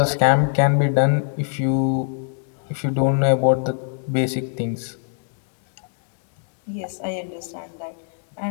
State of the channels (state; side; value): silent; right; digital silence